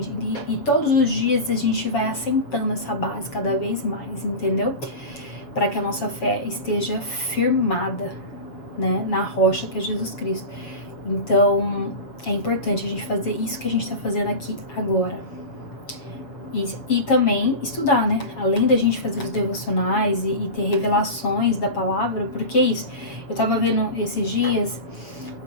E todos os dias a gente vai assentando essa base cada vez mais, entendeu? Para que a nossa fé esteja firmada, né, na rocha que é Jesus Cristo. Então, é importante a gente fazer isso que a gente tá fazendo aqui agora. E também estudar, né? Além da gente fazer os devocionais e ter revelações da palavra, porque é isso. Eu tava vendo esses dias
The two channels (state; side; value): late; right; 7.1 ms